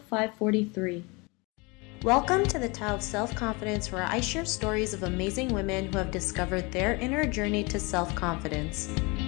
543. Welcome to the Tao of Self-Confidence, where I share stories of amazing women who have discovered their inner journey to self-confidence.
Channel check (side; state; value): right; quieter; 27.5 dB